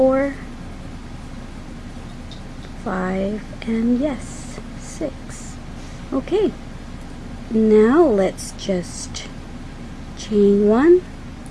5, and yes, 6. Okay, now let's just chain 1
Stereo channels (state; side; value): identical; both; correlation 1.00